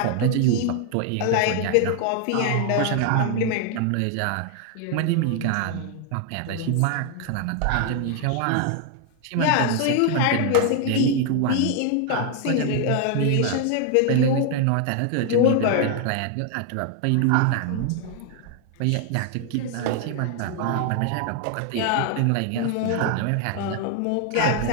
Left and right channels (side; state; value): both; different; correlation 0.00